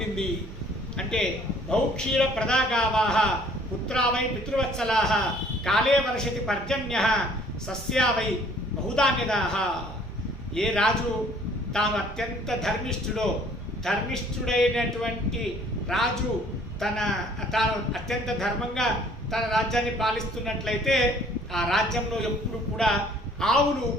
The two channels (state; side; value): normal; both; correlation 0.57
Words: అంటే, బహుక్షీర ప్రదాగావాహ పుత్రావై పితృవత్సలాహ కాలే వర్షతి పర్జన్య సస్యావై బహుధాన్యదాహ. ఏ రాజు తాను అత్యంత ధర్మిష్ఠుడైనటువంటి రాజు తాను అత్యంత ధర్మంగా తన రాజ్యాన్ని పాలిస్తున్నట్లయితే ఆ రాజ్యంలో ఎప్పుడు కూడా ఆవులు